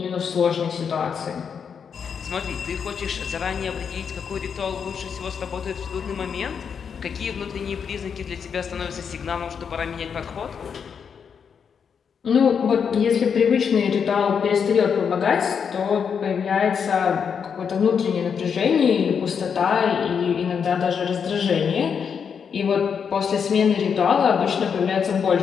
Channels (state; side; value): quieter; right; 6.8 dB